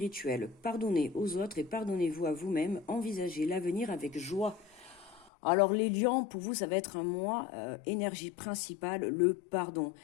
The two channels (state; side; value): drops out; right; at 5.3 s